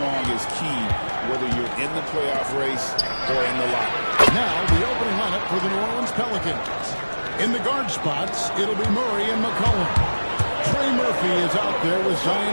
is key, whether you're in the playoff race or in the locker. Now, the opening lineup for the New Orleans Pelicans. In the guard spots, it'll be Murray and McCollum. Trey Murphy is out there with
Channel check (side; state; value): both; inverted; correlation -1.00